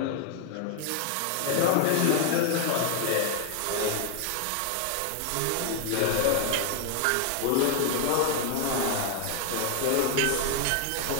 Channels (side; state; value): both; different; correlation 0.00